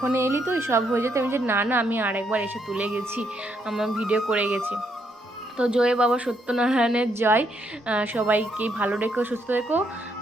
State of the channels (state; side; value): normal; both; correlation 0.75